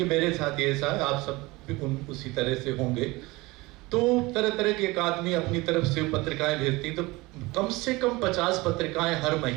मेरे साथ ये ऐसा है, आप सब भी उसी तरह से होंगे, तो तरह तरह के एक आदमी अपनी तरफ से पत्रिकाएं भेजती, तो कम से कम 50 पत्रिकाएं हर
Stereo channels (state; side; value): quieter; left; 22.2 dB